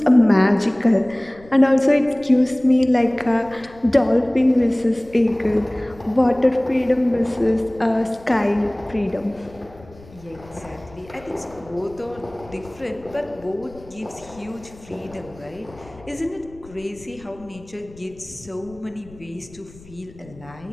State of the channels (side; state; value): left; noise; rumble, 22 dB below the sound